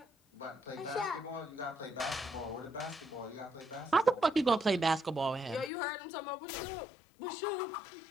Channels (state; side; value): drops out; right; at 5.7 s